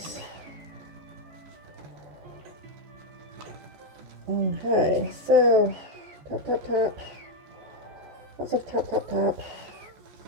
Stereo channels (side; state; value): left; late; 14 ms